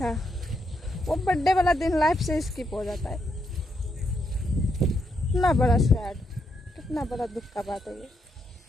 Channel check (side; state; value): both; normal; correlation 0.79